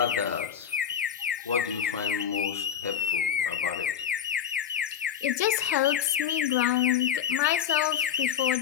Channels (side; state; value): right; quieter; 8.8 dB